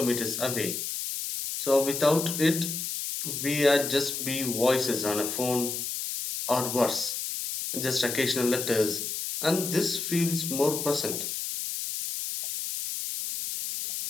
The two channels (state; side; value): noise; left; hiss, 4 dB below the sound